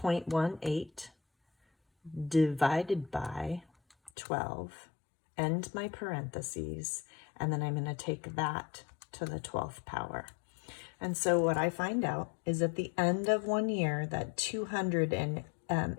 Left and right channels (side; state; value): right; drops out; at 4.1 s